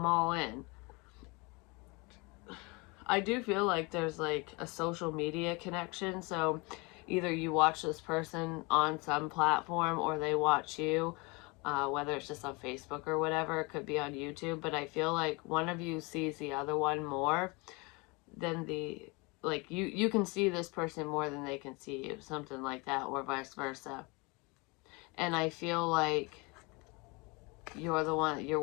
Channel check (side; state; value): right; quieter; 27.7 dB